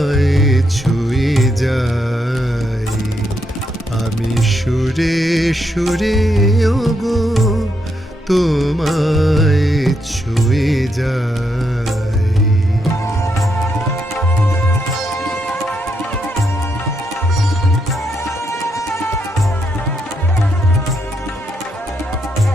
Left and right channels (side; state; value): both; normal; correlation 0.79